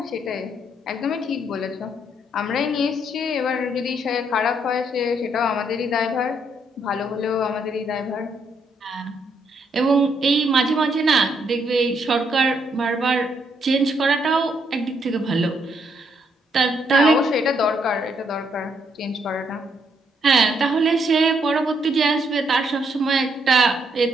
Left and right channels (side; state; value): both; normal; correlation 0.74